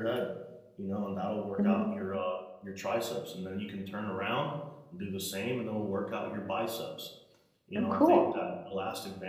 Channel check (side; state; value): both; identical; correlation 1.00